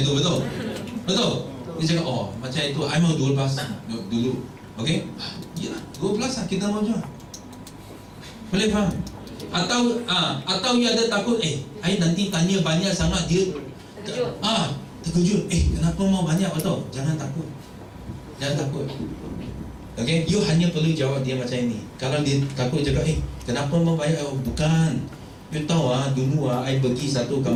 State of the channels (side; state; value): both; identical; correlation 1.00